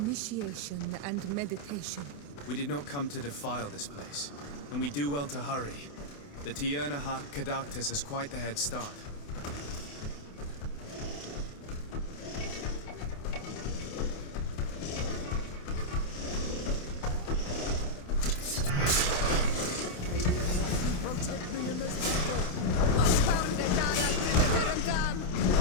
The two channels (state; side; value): late; right; 28 ms